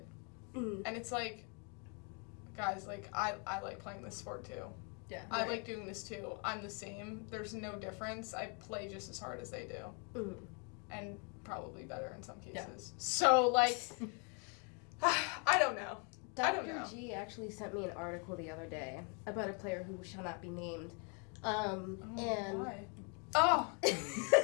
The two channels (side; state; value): right; quieter; 36.1 dB